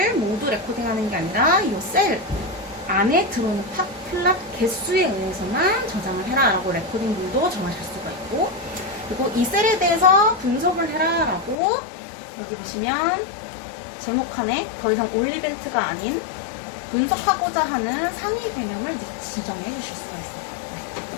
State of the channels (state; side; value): drops out; right; at 11.6 s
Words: 모두 레코딩하는 게 아니라 이 셀 안에 들어오는 팟플랫 개수에 의해서만 저장을 해라 라고 레코딩 룰도 정하실 수가 있고 그리고 이 셀에 대해서 분석을 해라 라고 여기 보시면 제목칸에 더 이상 올 이벤트가 아닌 분석하고자 하는 상위 개념을 이제 지정해 주실 수가 있습니다. 네,